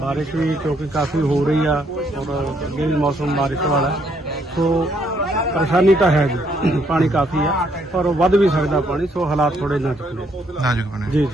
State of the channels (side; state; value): both; normal; correlation 0.71